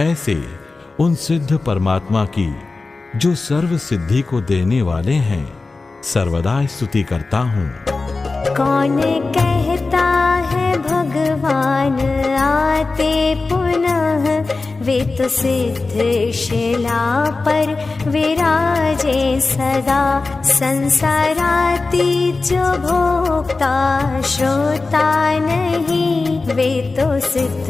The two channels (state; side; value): quieter; right; 3.7 dB